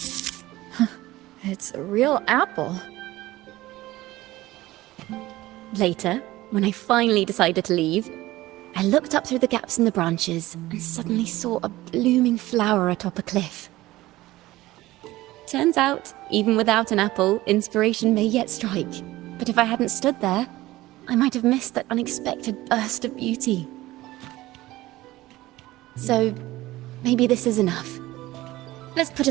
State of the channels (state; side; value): quieter; left; 17.4 dB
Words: It's a real apple. Later, when I finally decided to leave, I looked up through the gaps in the branches and suddenly saw a blooming flower atop a cliff. Turns out, even without an apple, inspiration may yet strike. But if I hadn't stood there, I might have missed that unexpected burst of beauty. So, maybe this is enough. Let's put